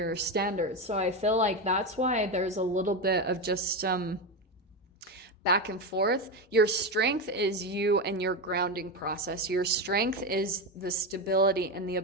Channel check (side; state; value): both; normal; correlation 0.14